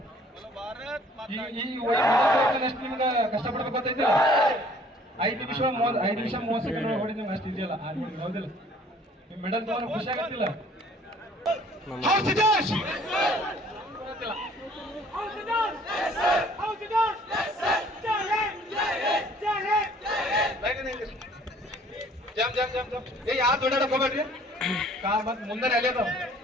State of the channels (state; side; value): normal; both; correlation 0.56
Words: ಎಷ್ಟು ನಿಮ್ಗೆ ಕಷ್ಟಪಡ್ಬೇಕು ಗೊತ್ತೈತಿ 5 ನಿಮಿಷ 30 ಸೆಕೆಂಡ್ ಹೊಡಿ ನಿಮ್ಗೆ ಅಷ್ಟು ಇದೆಯಲ್ಲ ಹೌದಿಲ್ಲ ನಿಮ್ ಮೆಡಲ್ ತಗೊಂಡು ಖುಷಿ ಆಗತ್ತಿಲ್ಲ ಜಂಪ್ ಜಂಪ್ ಜಂಪ್ ಜಂಪ್ ಏ ಯಾರು ದೊಡ್ಡಾಡಕ್ ಹೋಗ್ಬೇಡ್ರಿ ಮತ್ ಮುಂದೆ ಅಲ್ಲೇ ಅದಾವ